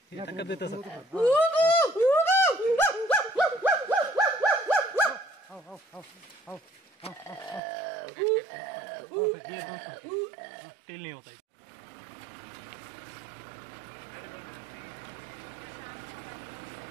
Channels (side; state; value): left; drops out; at 7.6 s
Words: ये टक्कर देता सर। तेल नहीं होता।